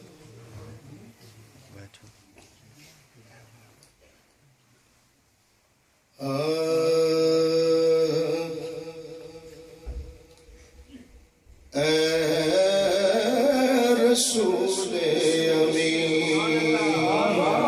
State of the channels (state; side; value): identical; both; correlation 1.00